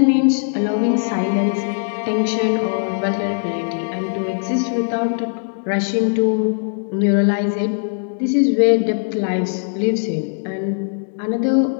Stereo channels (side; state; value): right; silent; digital silence